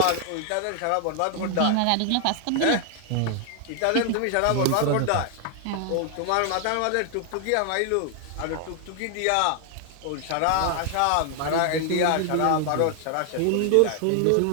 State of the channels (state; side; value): different; both; correlation 0.00